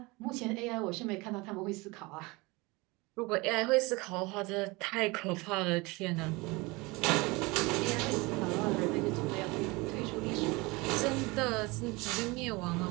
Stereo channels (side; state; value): left; quieter; 24.4 dB